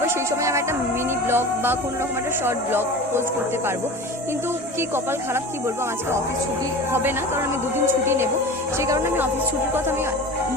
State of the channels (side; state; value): both; normal; correlation 0.34